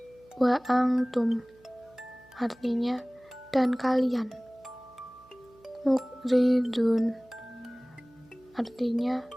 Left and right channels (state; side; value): noise; right; hum, 28 dB below the sound